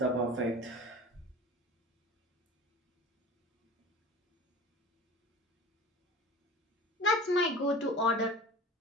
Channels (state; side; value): normal; both; correlation 0.38